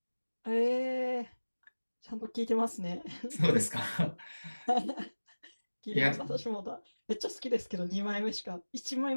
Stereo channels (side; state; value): both; inverted; correlation -1.00